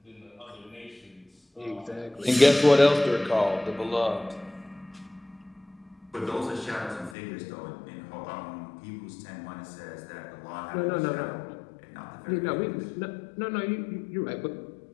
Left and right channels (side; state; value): right; drops out; at 7.2 s